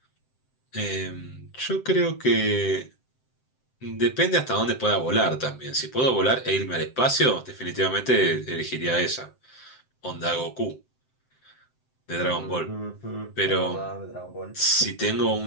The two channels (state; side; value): late; right; 7.7 ms